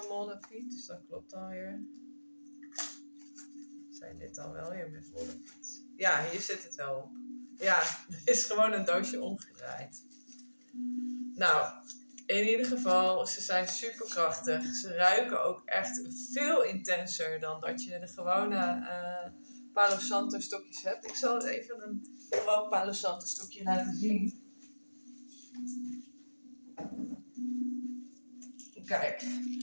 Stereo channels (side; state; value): both; inverted; correlation -1.00